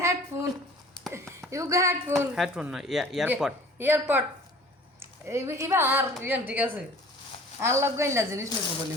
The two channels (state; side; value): normal; both; correlation 0.47